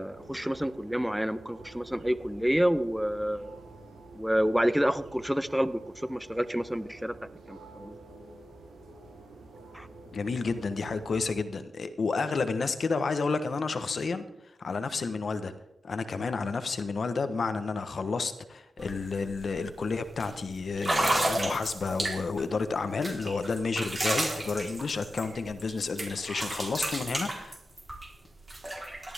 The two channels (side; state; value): both; normal; correlation 0.93